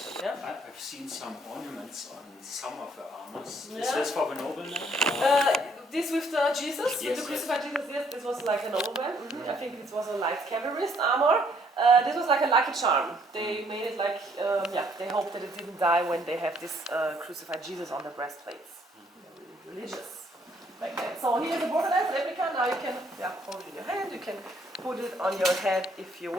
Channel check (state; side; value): normal; both; correlation 0.66